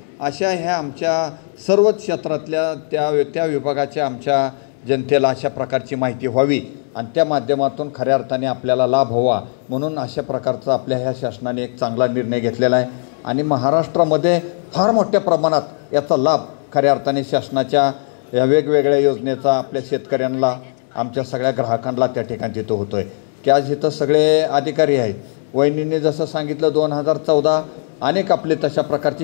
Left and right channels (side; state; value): right; silent; digital silence